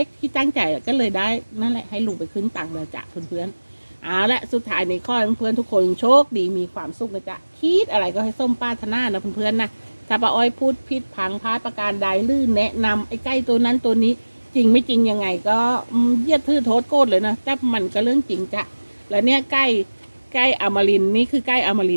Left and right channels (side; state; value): both; inverted; correlation -1.00